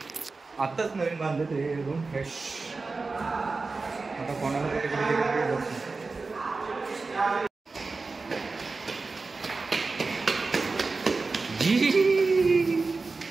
आत्ताच नवीन बांधलं ते रूम फ्रेश. आता कोणाला कुठे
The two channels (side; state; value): left; quieter; 3.9 dB